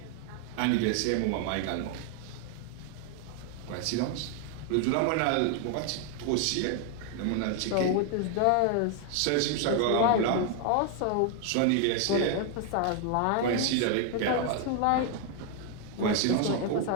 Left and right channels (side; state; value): both; different; correlation 0.00